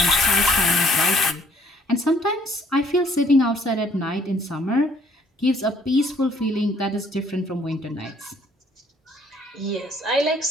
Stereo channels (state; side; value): normal; both; correlation 0.62